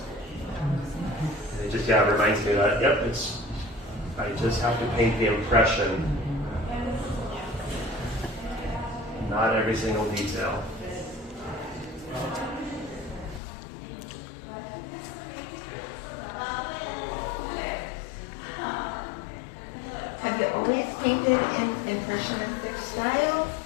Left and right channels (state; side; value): drops out; right; at 13.4 s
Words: It just reminds me that I just have to paint the impression, not every single detail. Have you always painted in impressionistic style?